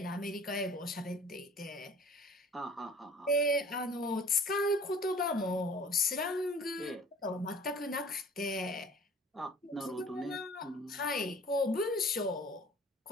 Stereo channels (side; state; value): both; normal; correlation 0.49